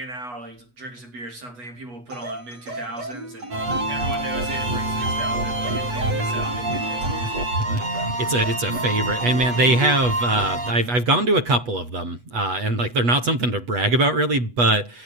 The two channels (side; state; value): left; late; 8.2 ms